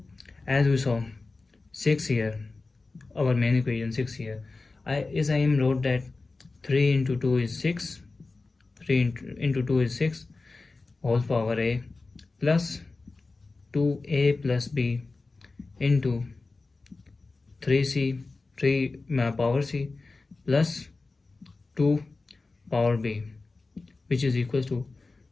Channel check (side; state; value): right; quieter; 3.6 dB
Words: as we saw 6 here, our main equation 6 here. I am wrote that 3 into 2 is 6, 3 into 2 is 6 whole power a plus 2a plus b into 3c 3 power c plus 2 power b, which is equal to